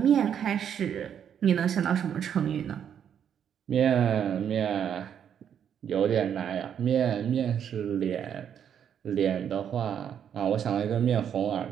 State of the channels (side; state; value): left; quieter; 8.7 dB